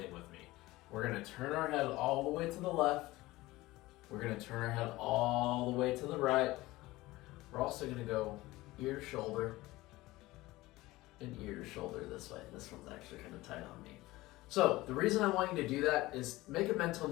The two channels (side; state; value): right; quieter; 19.0 dB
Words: with me. We're going to turn our head all the way to the left. We're going to turn our head all the way to the right. We're also going to go ear to shoulder and ear to shoulder this way. This one's actually kind of tight on me. So the reason I want you to do that is make a mental